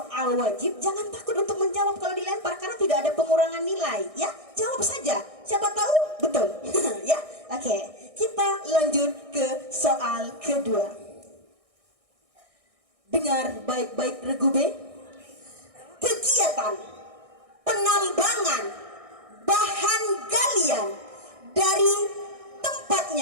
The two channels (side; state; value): left; late; 1.6 ms